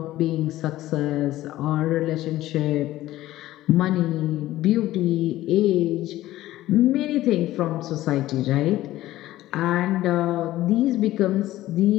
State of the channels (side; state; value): right; quieter; 15.4 dB